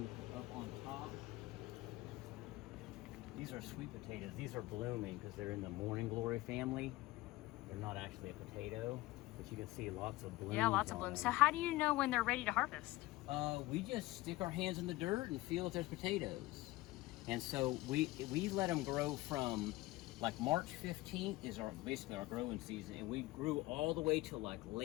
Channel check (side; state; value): right; quieter; 19.1 dB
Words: up on top. These are sweet potatoes. These are blooming because they're in the morning glory family. They're not actually a potato, but you can see lots of blooms. Yeah, lots of blooms. So how do you know when they're ready to harvest? We just stick our hands in the dirt and feel if there's potatoes. And so we let them grow from like March 15th is basically our growing season, and we grew all the way till like